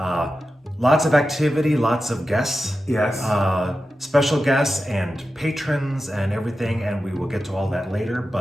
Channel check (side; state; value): both; normal; correlation 0.92